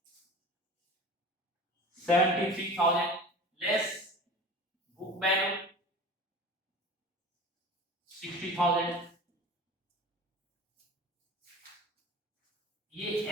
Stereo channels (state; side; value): normal; both; correlation 0.36